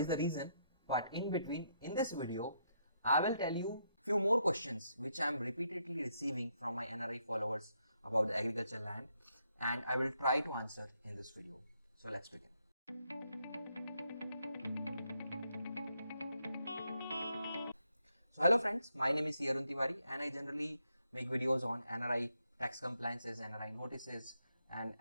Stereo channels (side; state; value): both; inverted; correlation -0.77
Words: the reason, but in between, in this video, I will tell you few more questions which I am repeatedly receiving from my NRI followers about the agricultural land, and I will try to answer in this video. So let's begin. So hello friends, my name is Arun Tiwari and I generally make videos on NRI tax compliances, NRI notices and